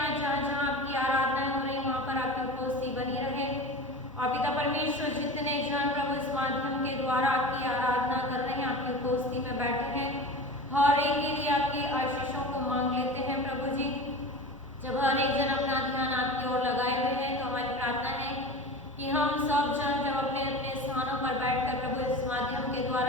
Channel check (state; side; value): normal; both; correlation 0.33